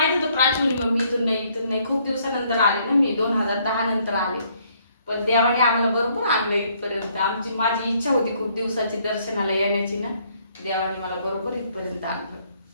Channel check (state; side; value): inverted; both; correlation -0.67